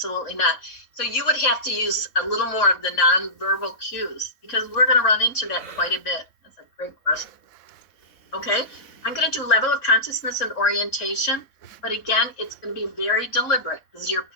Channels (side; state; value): right; late; 3.8 ms